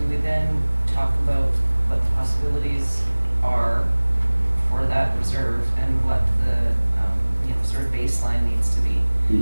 we then talk about what the possibilities are for that reserve and what the, sort of baseline needs to be?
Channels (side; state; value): both; inverted; correlation -1.00